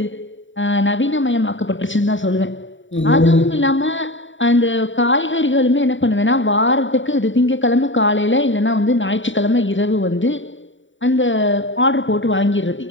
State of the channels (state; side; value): late; right; 0.55 ms